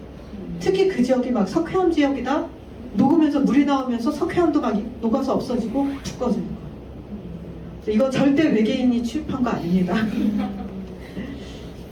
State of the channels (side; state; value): both; identical; correlation 1.00